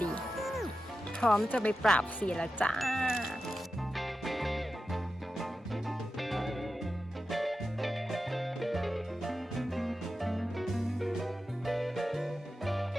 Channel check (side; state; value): both; normal; correlation 0.92